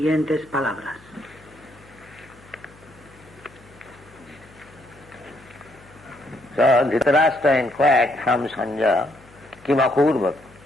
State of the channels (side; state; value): left; noise; hum, 25 dB below the sound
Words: palabras. So Dhritarashtra inquired from Sanjaya, Kimakurvat.